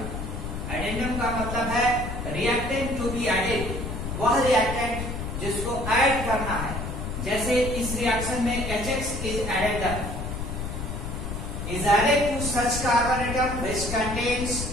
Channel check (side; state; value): left; noise; rumble, 5 dB below the sound